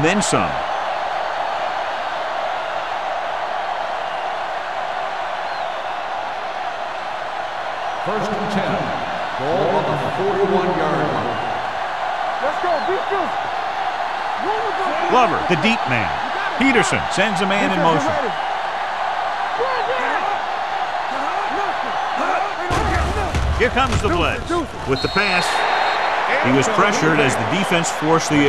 then some. First and 10. Ball on the 41-yard line. Let's go, defense. Glover, the deep man. Peterson sends a man in motion. Here comes the blitz. With the pass, he was pressured as the defense forced the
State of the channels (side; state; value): both; identical; correlation 1.00